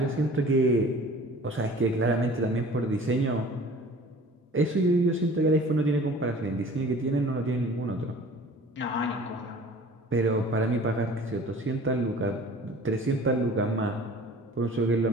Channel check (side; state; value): both; normal; correlation 0.46